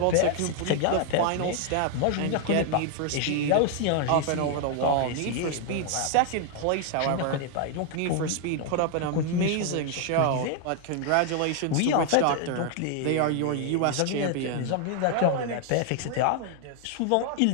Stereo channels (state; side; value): different; both; correlation 0.00